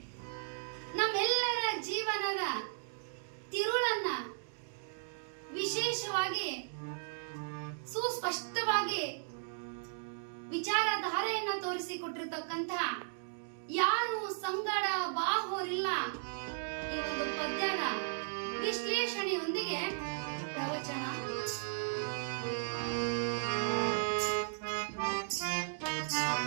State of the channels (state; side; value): silent; left; digital silence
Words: ನಮ್ಮೆಲ್ಲರ ಜೀವನದ ತಿರುಳನ್ನ ವಿಶೇಷವಾಗಿ ಸುಸ್ಪಷ್ಟವಾಗಿ ವಿಚಾರಧಾರೆಯನ್ನ ತೋರಿಸಿಕೊಟ್ಟಿರ್ತಕ್ಕಂಥ ಯಾರು ಸಂಗಡ ಬಾಹೋರಿಲ್ಲ ಈ ಒಂದು ಪದ್ಯದ ವಿಶ್ಲೇಷಣೆಯೊಂದಿಗೆ ಪ್ರವಚನ.